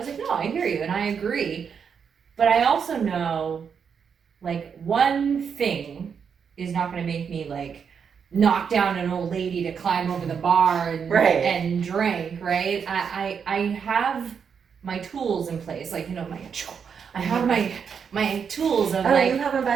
like, no, I hear you and I agree. But I also know like one thing is not going to make me like knock down an old lady to climb over the bar and and drink, right? I have my tools in place, like I have my tools of like. Oh, you have them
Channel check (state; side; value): quieter; left; 6.8 dB